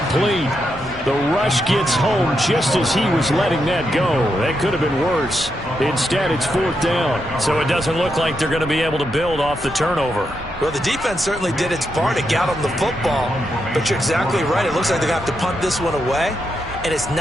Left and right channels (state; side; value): normal; both; correlation 0.83